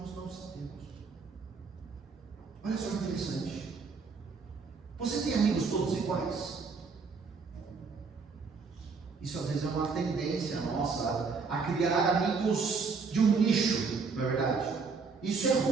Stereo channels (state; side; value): quieter; left; 4.9 dB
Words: não sabemos. Olha só que interessante. Você tem amigos todos iguais? Isso às vezes é uma tendência nossa a criar amigos de um nicho, não é verdade? Isso é